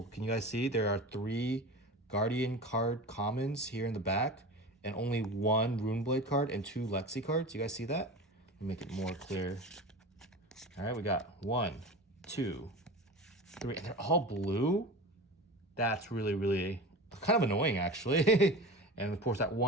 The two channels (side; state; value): both; normal; correlation 0.31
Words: Can you guys see? There are 3 Guardian card commons here in the back and only 1 Runeblade card and 2 Lexi cards. You guys see that? Let me make it more clear. All right, we got 1, 2, 3, and they're all blue. That's really, really kind of annoying, actually. And of course, that